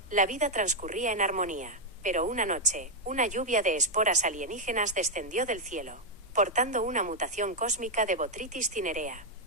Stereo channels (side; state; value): both; normal; correlation 0.00